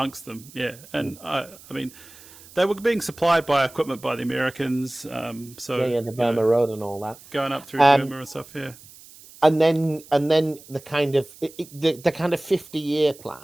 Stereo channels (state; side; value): noise; right; hiss, 21 dB below the sound